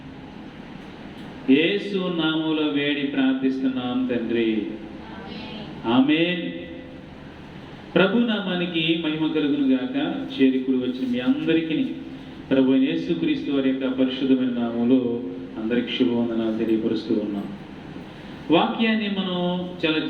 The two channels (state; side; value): identical; both; correlation 1.00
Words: యేసు నామములో వేడి ప్రార్థిస్తున్నాం తండ్రి. ఆమేన్. ప్రభు నామానికి మహిమ కలుగును గాక. చేరికుడు వచ్చిన మీ అందరికీ ప్రభు యేసుక్రీస్తు వారి యొక్క పరిశుద్ధమైన నామములో అందరికి శుభవందనాలు తెలియపరుస్తూ ఉన్నాం. వాక్యాన్ని మనం చాలా